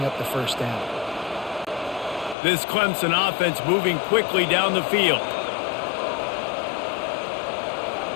up the first down. This Clemson offense moving quickly down the field.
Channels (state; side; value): drops out; right; at 2.4 s